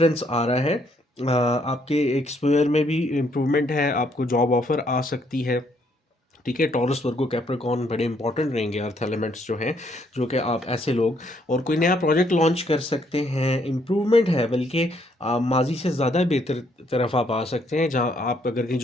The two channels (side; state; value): both; normal; correlation 0.70